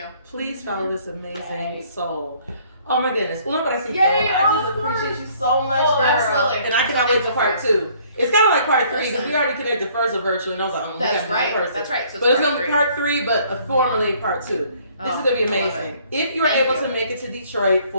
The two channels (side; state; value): both; inverted; correlation -0.60